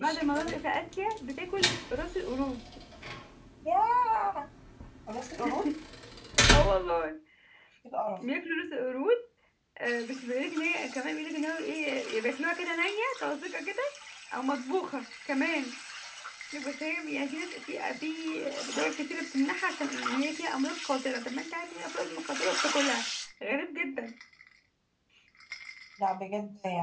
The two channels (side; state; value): both; identical; correlation 1.00